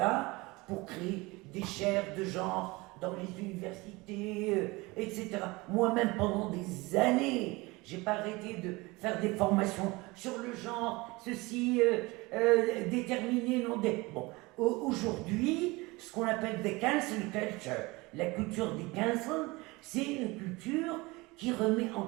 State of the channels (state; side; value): quieter; left; 23.3 dB